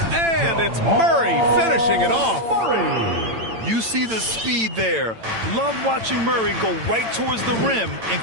And it's Murray finishing it off. You see the speed there. Love watching Murray go right towards the rim and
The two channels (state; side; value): late; left; 8.9 ms